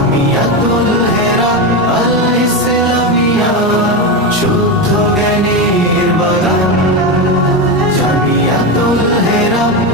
হেরা আল ইসলামিয়া, শুদ্ধ জ্ঞানের বাগান। জামিয়াতুল হেরা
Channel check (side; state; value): both; normal; correlation 0.14